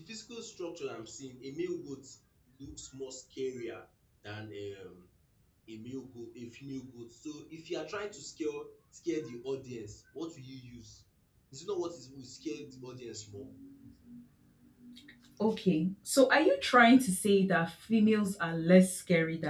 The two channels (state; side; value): identical; both; correlation 1.00